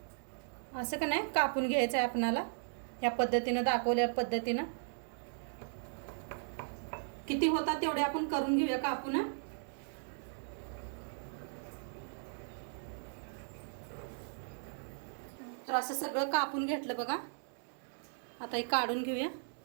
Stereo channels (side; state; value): left; silent; digital silence